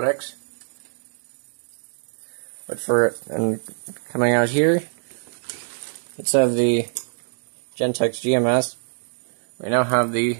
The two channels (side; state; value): left; silent; digital silence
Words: But and coming out here, let's have the Gentex GMS. We now have the